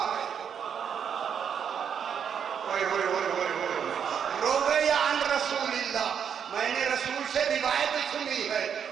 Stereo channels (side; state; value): left; quieter; 7.7 dB